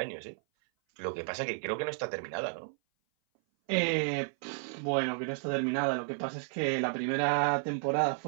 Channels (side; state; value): left; silent; 56 dB below the other